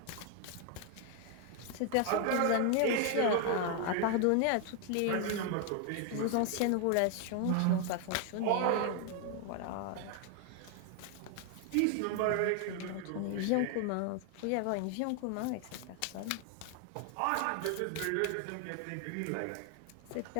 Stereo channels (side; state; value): both; different; correlation 0.00